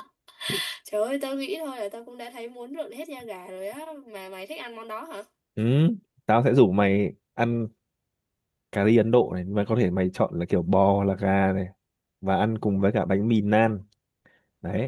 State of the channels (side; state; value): both; identical; correlation 1.00